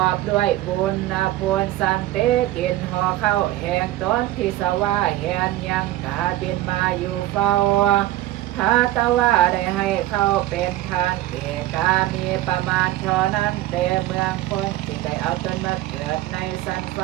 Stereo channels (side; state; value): left; quieter; 15.4 dB